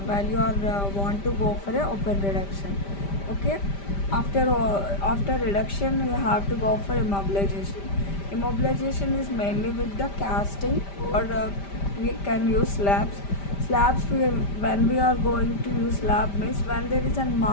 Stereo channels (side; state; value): right; late; 5.1 ms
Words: are want to go for a open reduction. Okay, after reduction you have to go for immobilization. Immobilization is mainly with the casting or we can use slabs. When we are going to use slab means when there is a